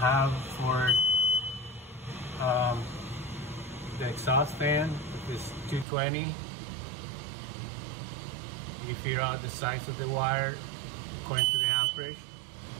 for the exhaust fan. If it's 220, you figure out the size of the wire according to the amperage.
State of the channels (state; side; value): drops out; left; at 5.9 s